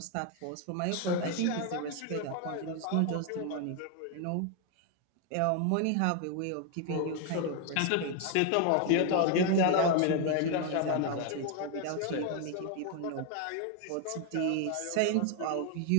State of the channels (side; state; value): both; different; correlation 0.01